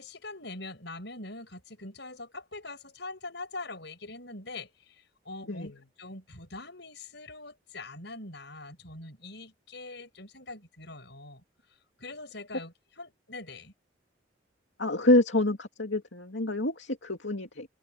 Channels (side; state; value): both; normal; correlation 0.13